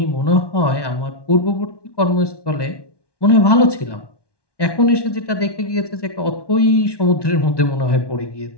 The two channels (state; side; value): late; right; 1.1 ms